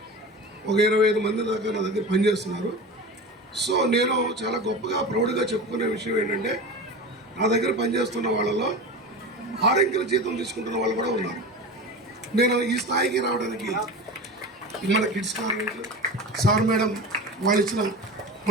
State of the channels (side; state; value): both; normal; correlation 0.30